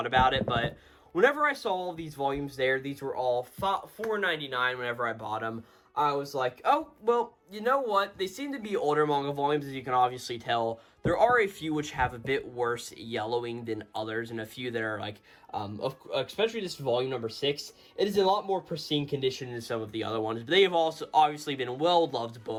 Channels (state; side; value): identical; both; correlation 1.00